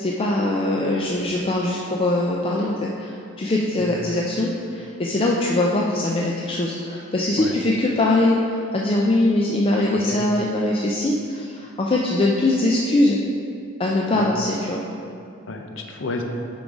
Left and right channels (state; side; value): normal; both; correlation 0.60